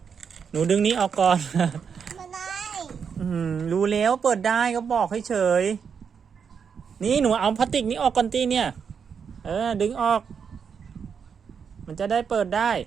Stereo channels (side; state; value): left; quieter; 6.7 dB